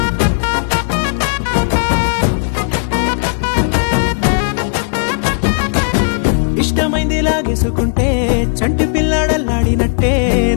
ఇష్టమైంది లాగేసుకుంటే చంటి పిల్లాడల్లాడినట్టే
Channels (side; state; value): right; silent; digital silence